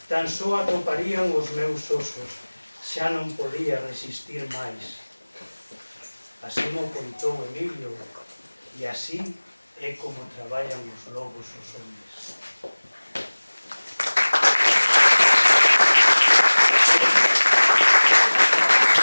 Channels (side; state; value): both; inverted; correlation -1.00